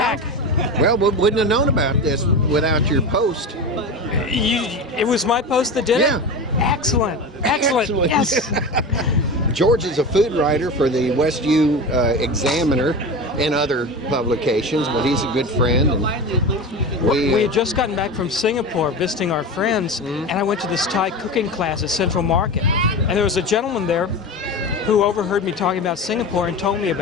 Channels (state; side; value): normal; both; correlation 0.26